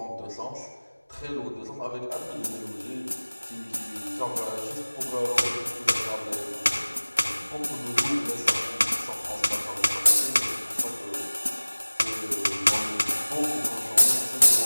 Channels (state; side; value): inverted; both; correlation -1.00